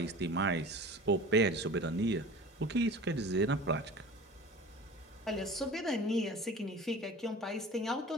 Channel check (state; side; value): normal; both; correlation 0.39